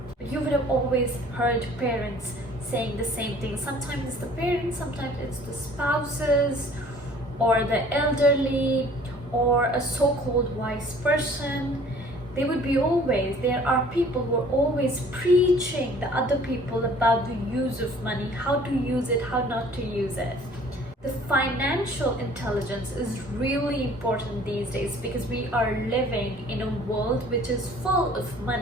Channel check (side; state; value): both; normal; correlation 0.52